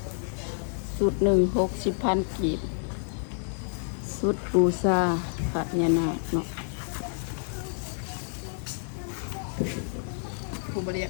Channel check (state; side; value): silent; right; 59 dB below the other